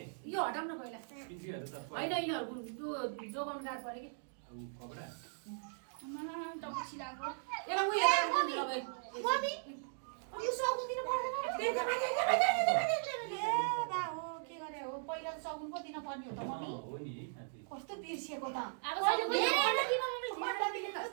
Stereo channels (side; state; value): left; silent; digital silence